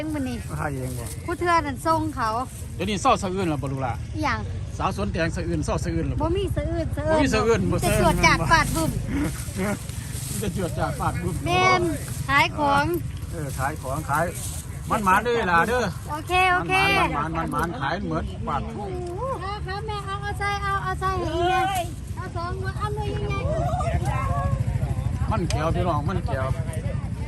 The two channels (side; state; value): both; identical; correlation 1.00